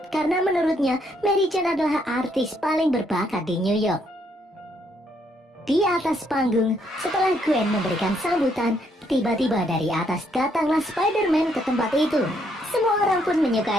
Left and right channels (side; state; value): both; normal; correlation 0.72